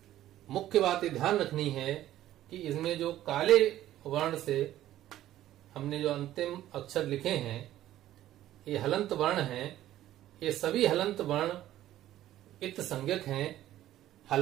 मुख्य बात ये ध्यान रखनी है कि इसमें जो काले वर्ण से हमने जो अंतिम अक्षर लिखे हैं, ये हलंत वर्ण हैं। ये सभी हलंत वर्ण इत संज्ञक हैं।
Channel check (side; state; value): left; quieter; 13.5 dB